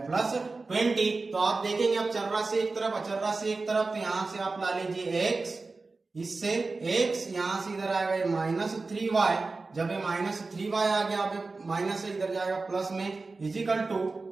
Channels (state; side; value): quieter; left; 3.8 dB